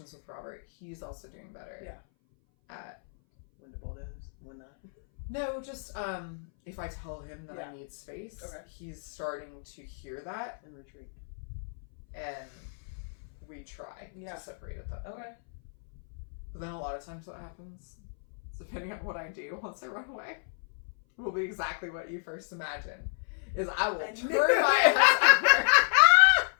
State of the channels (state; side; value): silent; right; 57 dB below the other